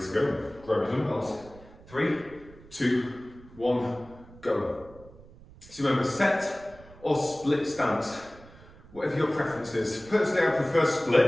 to go? Grab your dumbbells. 3, 2, 1, go. So remember, set or split stance, whatever your preference is. Personally, I prefer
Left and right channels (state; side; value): noise; right; rumble, 21 dB below the sound